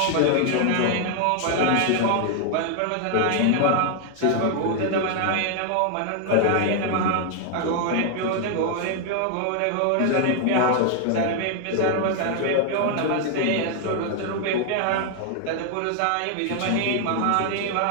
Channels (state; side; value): different; both; correlation 0.00